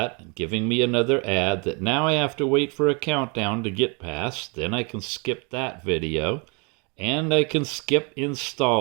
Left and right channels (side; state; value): left; quieter; 32.3 dB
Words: giving me another ad that now I have to wait for a countdown to get past. Then I can skip that video, and I can skip